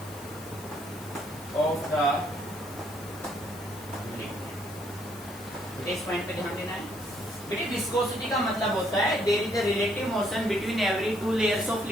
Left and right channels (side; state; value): left; noise; hiss, 17 dB below the sound